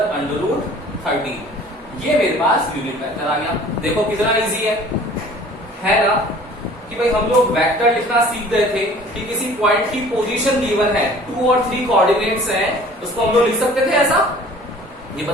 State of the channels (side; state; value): both; normal; correlation 0.49